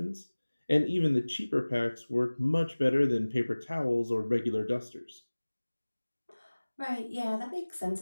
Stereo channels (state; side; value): inverted; both; correlation -1.00